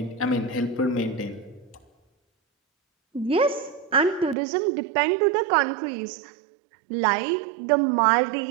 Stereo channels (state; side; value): drops out; left; at 4.4 s